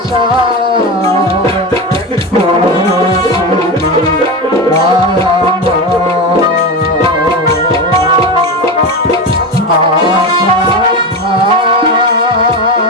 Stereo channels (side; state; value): both; normal; correlation 0.21